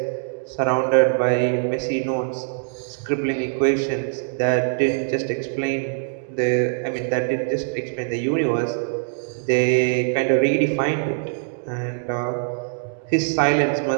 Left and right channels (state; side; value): silent; left; digital silence